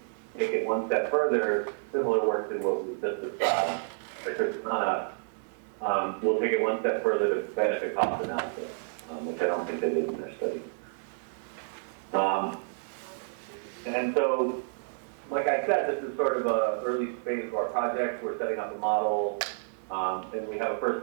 take it one step further, similar work to what we just described. Christiana will take it one step further to benefit cost analysis, which I don't think they did in their study. And so, like I said, this is sort of an early phase of our project. We're setting up a model, and we have a first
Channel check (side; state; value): left; silent; 58 dB below the other